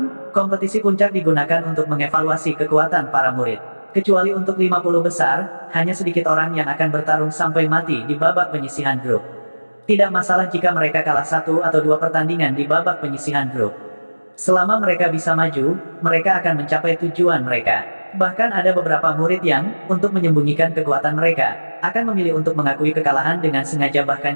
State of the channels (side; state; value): both; inverted; correlation -1.00